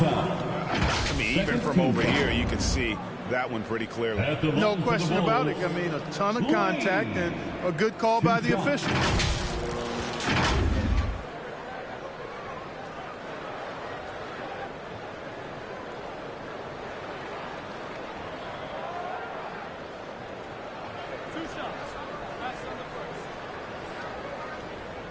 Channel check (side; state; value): both; identical; correlation 1.00